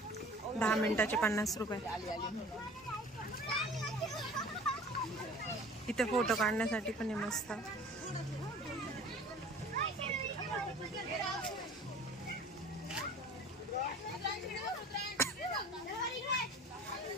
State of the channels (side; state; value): both; normal; correlation 0.45